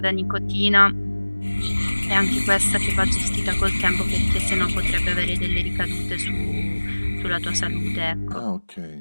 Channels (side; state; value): both; inverted; correlation -1.00